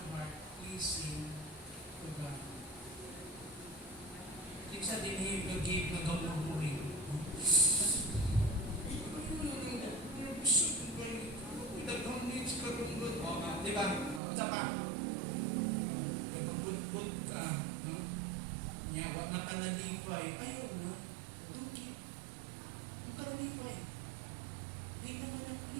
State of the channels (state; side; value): drops out; left; at 14.2 s